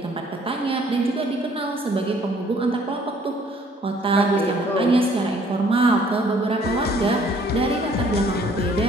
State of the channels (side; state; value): both; normal; correlation 0.60